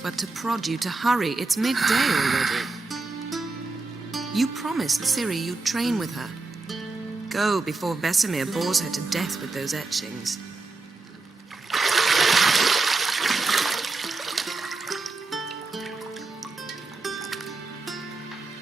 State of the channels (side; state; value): left; quieter; 3.6 dB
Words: to prod you to hurry. It's midday already. You promised Ciri you'd train with her. Go before Vesemir bores her to death with those etchings.